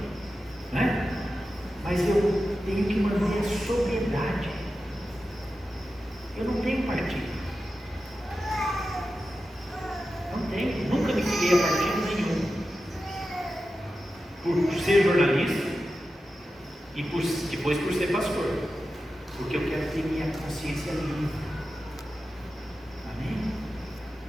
né? Mas eu tenho que manter a sobriedade. Eu não tenho partido. Não tenho, nunca me filiei a partido nenhum. Por ser jornalista e depois por ser pastor, porque eu quero ter minha consciência livre. Amém?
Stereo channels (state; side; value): normal; both; correlation 0.92